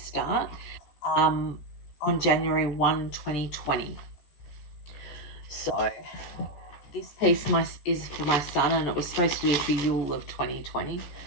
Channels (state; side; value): late; right; 14 ms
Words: on January 1, 2020. So this piece is for my son, and it was supposed to be for Yule of 2020.